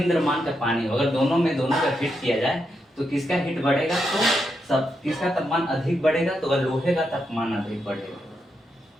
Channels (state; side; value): normal; both; correlation 0.83